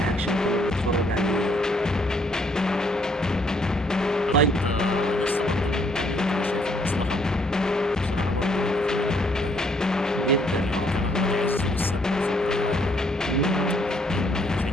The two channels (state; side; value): normal; both; correlation 0.67